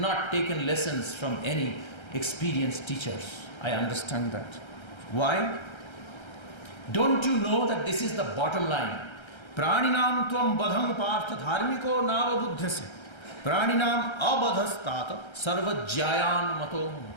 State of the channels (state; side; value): late; right; 1.3 ms